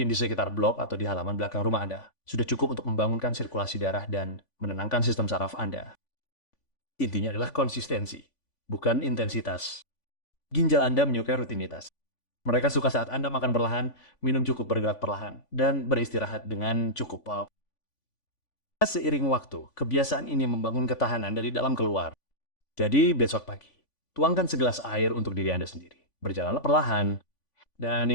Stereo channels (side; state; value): right; late; 3.5 ms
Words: di sekitar blok atau di halaman belakang rumah Anda, sudah cukup untuk membangunkan sirkulasi darah dan menenangkan sistem saraf Anda. Intinya adalah konsistensi, bukan intensitas. Ginjal Anda menyukai rutinitas. Mereka suka saat Anda makan perlahan, minum cukup, bergerak perlahan, dan beristirahat dengan cukup. Seiring waktu, kebiasaan ini membangun ketahanan dari dalam keluar. Jadi besok pagi, tuangkan segelas air untuk diri Anda sendiri. Berjalanlah perlahan. Dan